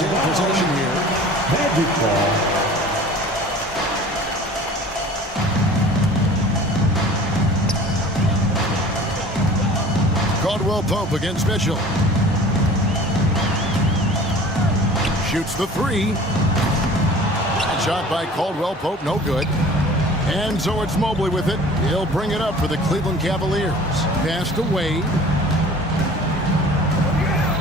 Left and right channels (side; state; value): both; normal; correlation 0.45